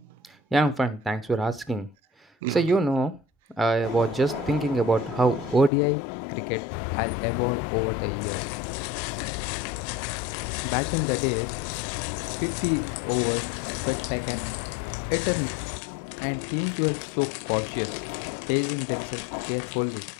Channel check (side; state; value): right; drops out; at 5.7 s